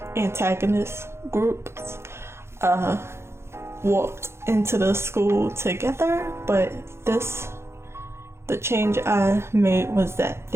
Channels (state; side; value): late; left; 0.12 ms